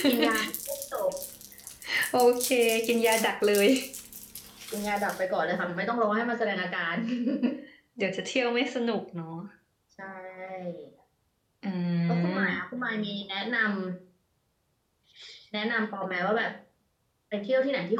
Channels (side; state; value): both; identical; correlation 1.00